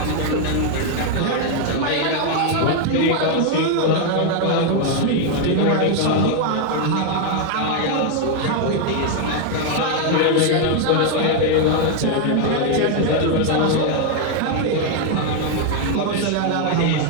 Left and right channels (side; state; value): both; different; correlation 0.01